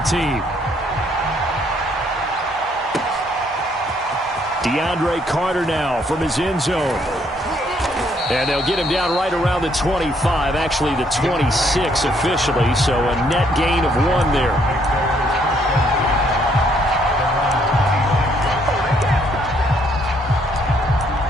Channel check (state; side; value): normal; both; correlation 0.68